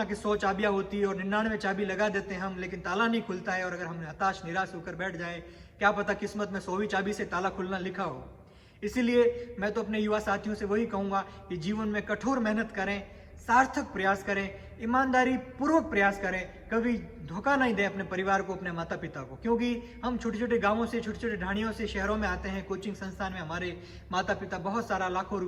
कि 100 चाबियाँ होती है और 99 चाबी लगा देते हैं हम, लेकिन ताला नहीं खुलता है। और अगर हम हताश निराश होकर बैठ जाए, क्या पता किस्मत में 100वीं चाबी से ताला खुलना लिखा हो। इसीलिए मैं तो अपने युवा साथियों से वही कहूँगा कि जीवन में कठोर मेहनत करें, सार्थक प्रयास करें, ईमानदारी पूर्वक प्रयास करें, कभी धोखा नहीं दें अपने परिवार को, अपने माता पिता को। क्योंकि हम छोटे छोटे गांवों से, छोटे छोटे ढाणियों से शहरों में आते हैं, कोचिंग संस्थान में हमारे माता पिता बहुत सारा लाखों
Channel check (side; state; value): both; identical; correlation 1.00